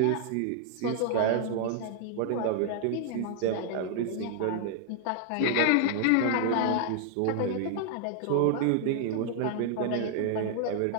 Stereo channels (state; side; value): different; both; correlation -0.01